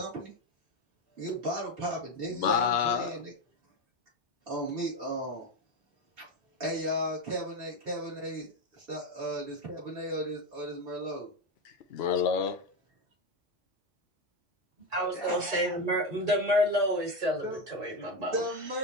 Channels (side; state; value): both; normal; correlation 0.13